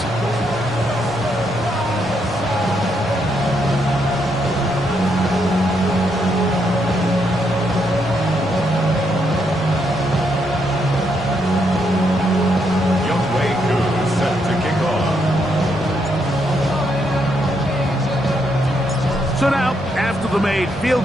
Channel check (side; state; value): both; normal; correlation 0.77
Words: So now, after the made